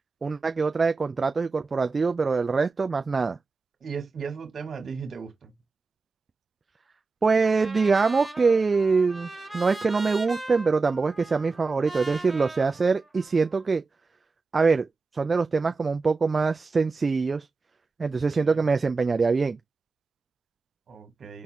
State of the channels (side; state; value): left; quieter; 4.1 dB